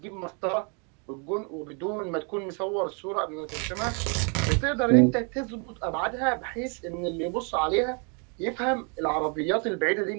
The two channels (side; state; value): left; quieter; 36.5 dB